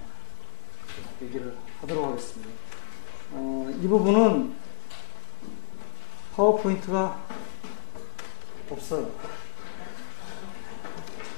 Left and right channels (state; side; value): silent; right; digital silence